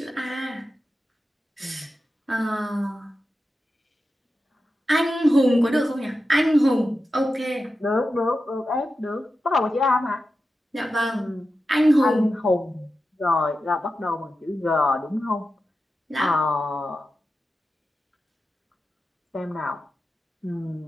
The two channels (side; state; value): both; normal; correlation 0.91